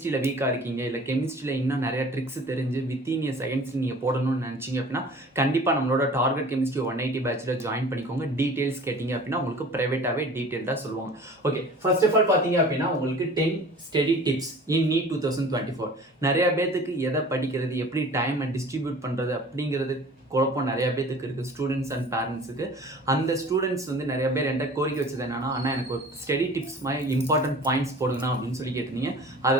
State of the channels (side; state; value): both; normal; correlation 0.44